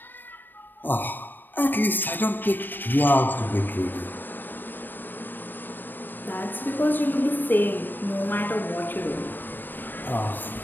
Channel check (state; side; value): late; right; 0.093 ms